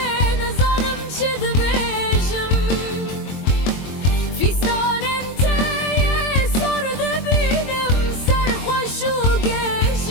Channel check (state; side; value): late; right; 22 ms